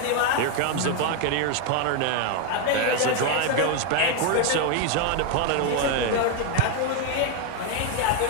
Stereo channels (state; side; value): different; both; correlation 0.01